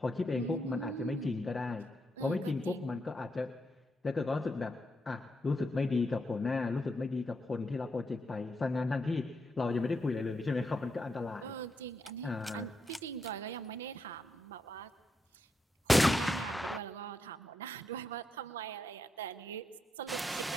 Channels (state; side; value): normal; both; correlation 0.82